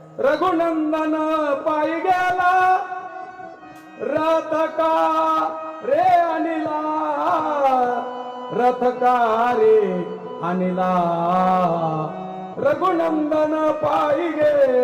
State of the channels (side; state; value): both; identical; correlation 1.00